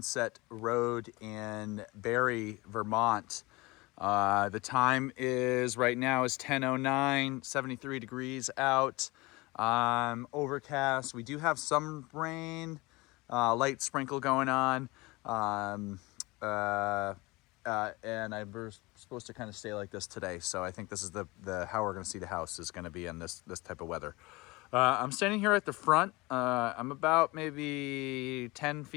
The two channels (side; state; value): right; quieter; 23.2 dB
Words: Road in Barrie, Vermont. The time is right now is 10:09, 73 degrees out, overcast. We do have some rain, light sprinkle going on, and we're supposed to kind of stay like this today. So I think this is the how we're going to see the house is going to be in this type of weather. I'm standing here at the front. I'm about maybe 10